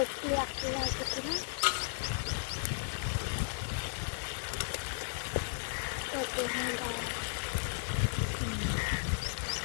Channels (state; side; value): silent; right; digital silence